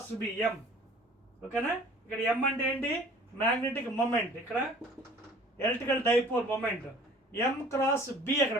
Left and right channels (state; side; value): normal; both; correlation 0.49